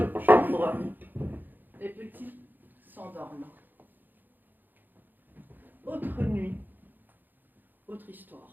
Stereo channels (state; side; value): late; left; 0.088 ms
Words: chambre. Les petits s'endorment. Autre nuit, autre histoire.